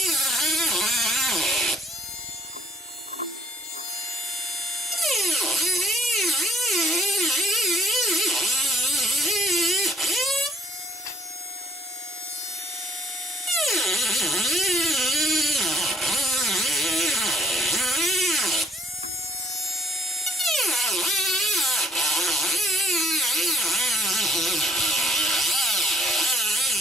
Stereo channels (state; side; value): normal; both; correlation 0.63